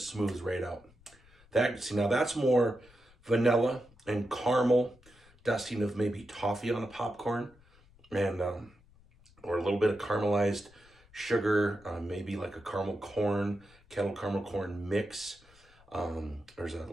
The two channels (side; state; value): left; noise; rumble, 27 dB below the sound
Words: right out. Now that's more vanilla and caramel, dusting of maybe toffee on a popcorn, and or a little bit of caramelized sugar, maybe like a kettle caramel corn mix. There's a